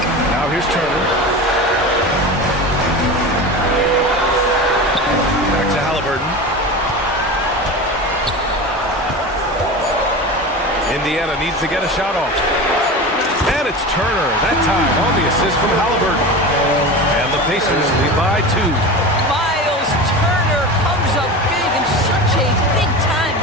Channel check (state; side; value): normal; both; correlation 0.29